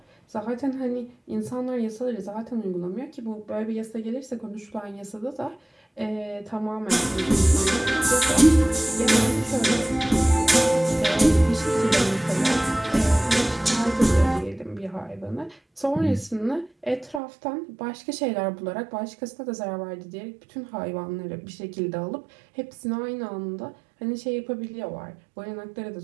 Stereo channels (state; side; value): drops out; left; at 17.2 s